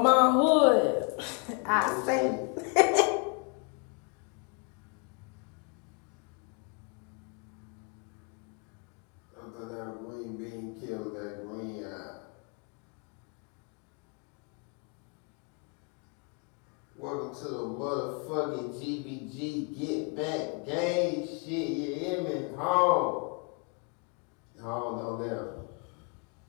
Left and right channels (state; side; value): quieter; right; 34.0 dB